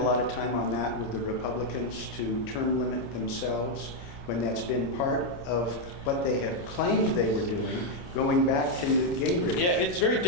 lot of time on that with the Republicans to term limit themselves when that's been part of what they have claimed they were doing, going back to Newt Gingrich. Yeah, it's very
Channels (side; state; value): right; late; 29 ms